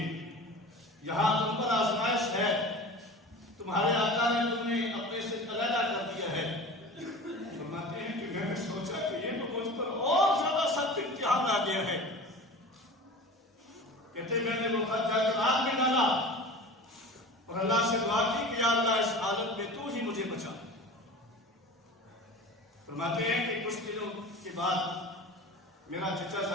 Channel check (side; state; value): both; normal; correlation 0.35